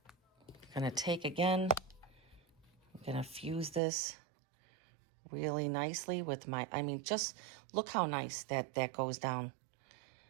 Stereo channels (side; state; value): left; drops out; at 3.8 s